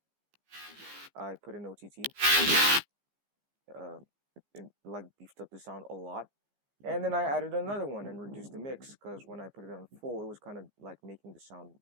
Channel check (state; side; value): late; left; 15 ms